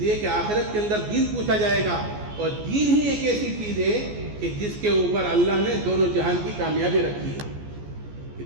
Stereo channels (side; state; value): left; late; 14 ms